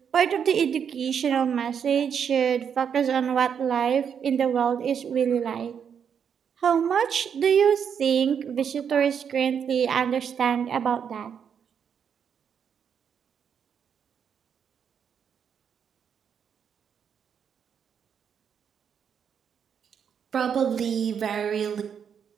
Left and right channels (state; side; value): quieter; left; 7.6 dB